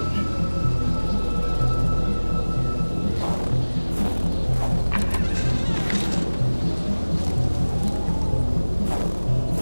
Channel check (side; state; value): both; inverted; correlation -1.00